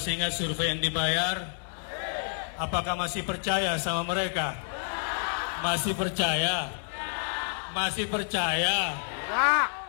ingat survei yang dibayar? Apakah masih percaya sama mereka? Masih percaya? Masih percaya?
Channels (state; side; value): silent; right; 59 dB below the other